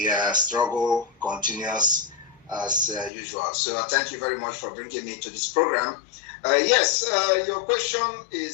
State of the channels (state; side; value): drops out; right; at 3.1 s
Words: struggle continues as usual. So thank you very much for bringing me to this program. Yes, your question